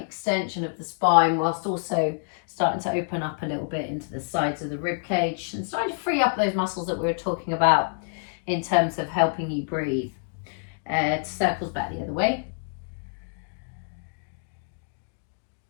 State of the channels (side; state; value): right; silent; digital silence